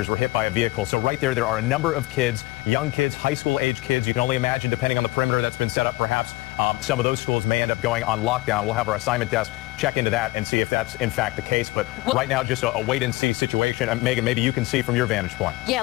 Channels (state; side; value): quieter; right; 20.6 dB